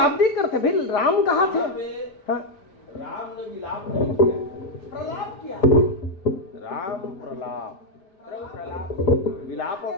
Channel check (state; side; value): late; right; 5.0 ms